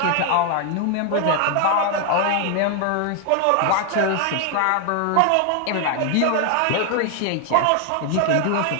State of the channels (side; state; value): both; different; correlation 0.00